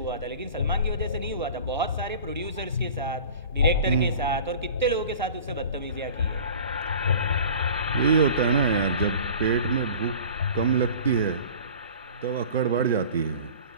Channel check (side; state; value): both; inverted; correlation -0.42